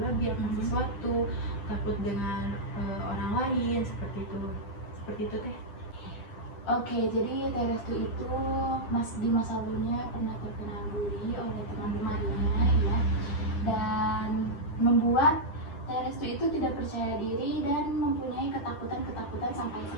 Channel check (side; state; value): right; late; 10 ms